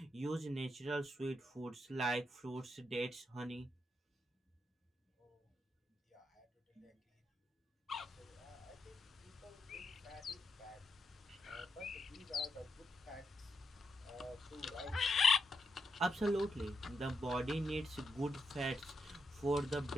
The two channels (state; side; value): normal; both; correlation 0.82